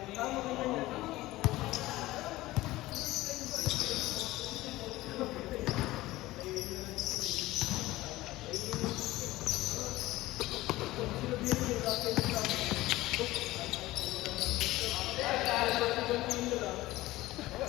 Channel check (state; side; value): quieter; right; 17.7 dB